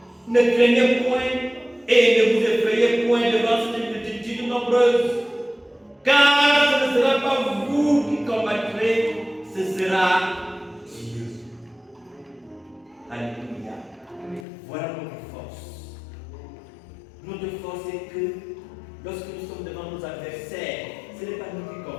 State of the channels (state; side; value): drops out; right; at 14.5 s